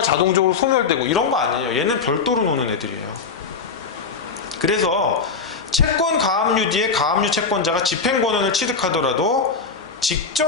자동적으로 소멸되고 이런 거 아니에요. 얘는 별도로 노는 애들이에요. 그래서 채권 가압류 뒤에 가압류 채권자가 집행권한을 취득하더라도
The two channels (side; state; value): right; quieter; 5.0 dB